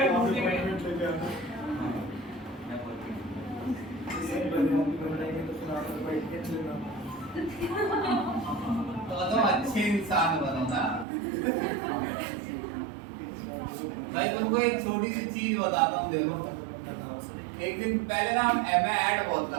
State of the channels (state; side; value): drops out; left; at 11.1 s